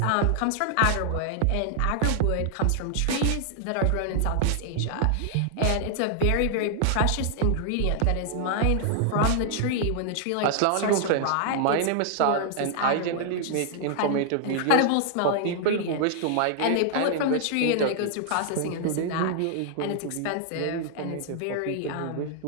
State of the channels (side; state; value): both; different; correlation -0.01